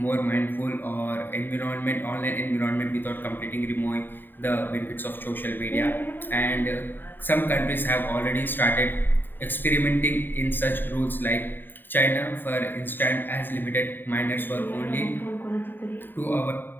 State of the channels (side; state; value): right; late; 0.093 ms